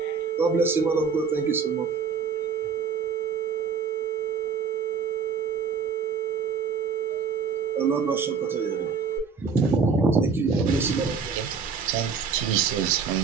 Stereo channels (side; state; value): left; quieter; 5.6 dB